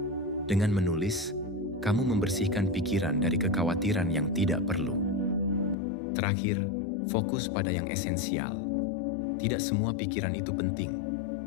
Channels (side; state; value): right; drops out; at 5.8 s